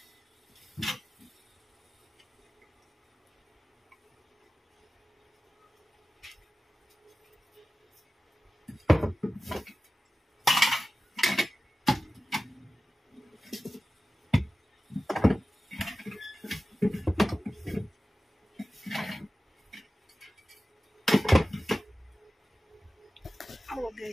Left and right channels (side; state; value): both; normal; correlation 0.95